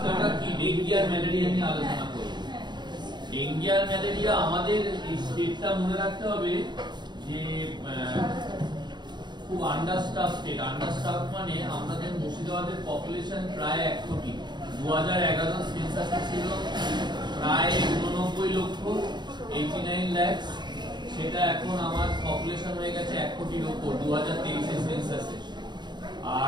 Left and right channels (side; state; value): left; late; 0.21 ms